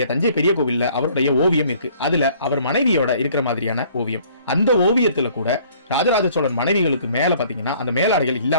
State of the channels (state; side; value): inverted; both; correlation -0.57